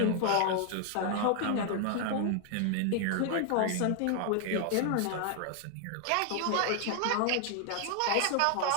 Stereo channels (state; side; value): different; both; correlation 0.00